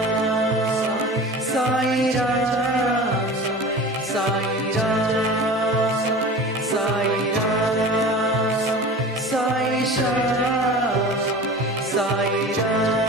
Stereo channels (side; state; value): both; normal; correlation 0.37